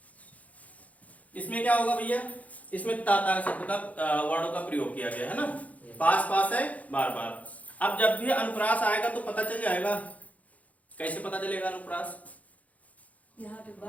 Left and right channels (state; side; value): late; right; 0.070 ms